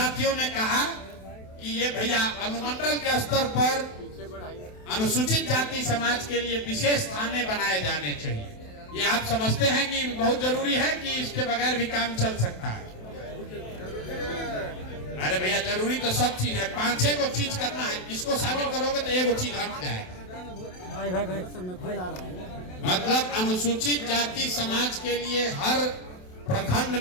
ने कहा कि ये भैया अनुमंडल के स्तर पर अनुसूचित जाति समाज के लिए विशेष थाने बनाए जाने चाहिए। ये आप समझते हैं कि बहुत जरूरी है कि इसके बगैर भी काम चल सकता है? अरे भैया जरूरी तो सब चीज है, 5-6 को चीज करना है, इसको शामिल करोगे तो एक चीज हट जाएगा। मतलब अनुसूचित जाति समाज के लिए हर प्रखंड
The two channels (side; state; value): right; late; 27 ms